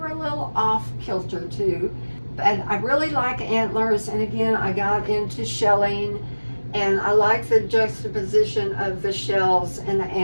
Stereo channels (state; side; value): inverted; both; correlation -1.00